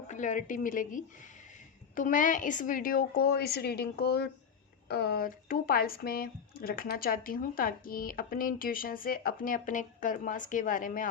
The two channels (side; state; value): right; quieter; 6.8 dB